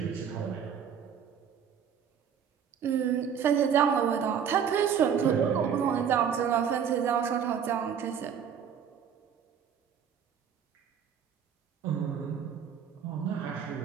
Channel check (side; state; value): left; quieter; 7.8 dB